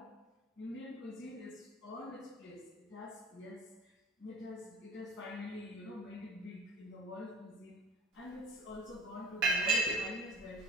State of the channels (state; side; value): normal; both; correlation 0.40